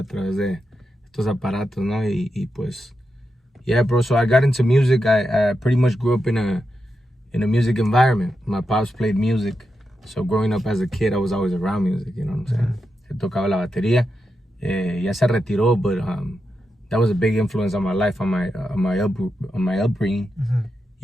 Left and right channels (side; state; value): both; normal; correlation 0.87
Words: través de estos aparatos, ¿no? Y pues, yeah, bro. So I got into music. I pretty much grew up in a music environment. My pops played music. So growing up as a kid, I was always around music, you know what I'm saying? Él tocaba la batería. Ya se retiró, but that was a big influence on my life, on my upbringing.